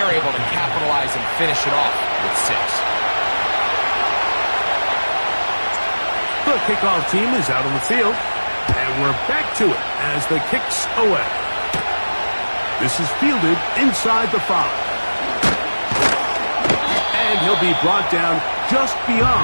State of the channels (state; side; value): inverted; both; correlation -1.00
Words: able to capitalize and finish it off with 6. The kickoff team is out on the field, and we're back to it as the kick's away. This is fielded inside the 5. And he'll be brought down just